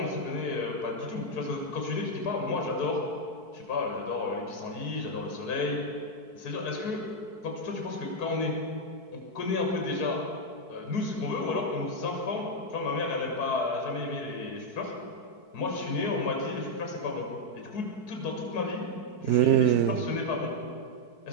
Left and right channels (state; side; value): late; right; 4.6 ms